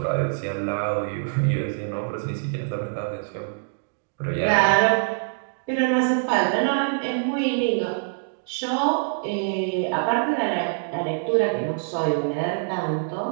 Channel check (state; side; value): silent; left; digital silence